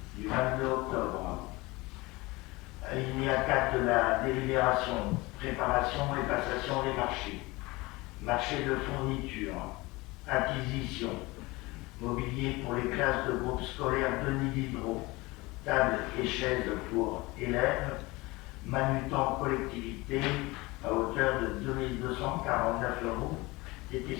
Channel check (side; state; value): right; quieter; 22.5 dB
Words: du 22 octobre. Alinéa 4 de la délibération, préparation et passation des marchés. Marché de fourniture, acquisition, mobilier pour les classes de groupe scolaire Denis Diderot, table et chaises pour élèves, manutant collectivité à hauteur de 2249 €